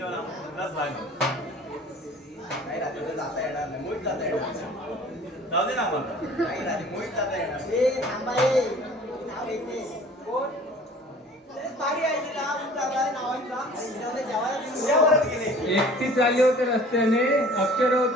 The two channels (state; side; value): normal; both; correlation 0.48